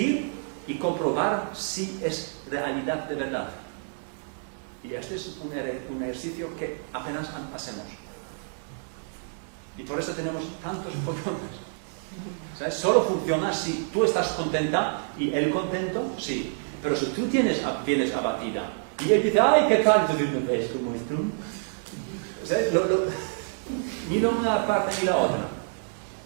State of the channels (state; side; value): silent; left; digital silence